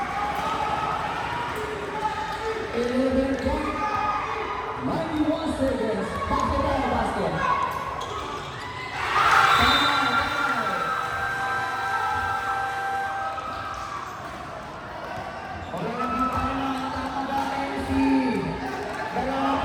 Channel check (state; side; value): identical; both; correlation 1.00